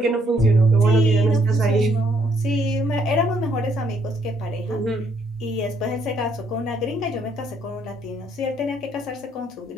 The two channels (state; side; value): normal; both; correlation 0.69